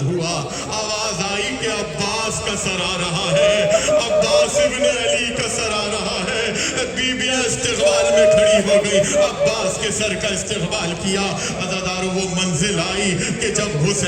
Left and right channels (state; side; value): identical; both; correlation 1.00